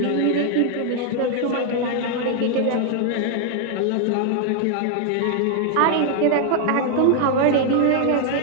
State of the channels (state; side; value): different; both; correlation 0.00